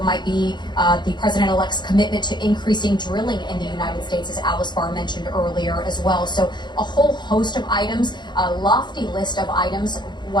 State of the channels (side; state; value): right; late; 0.21 ms